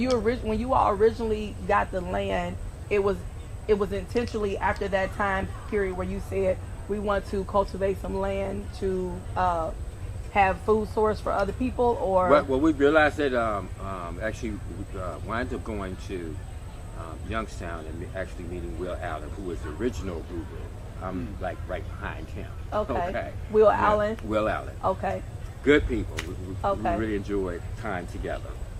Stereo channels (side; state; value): both; identical; correlation 1.00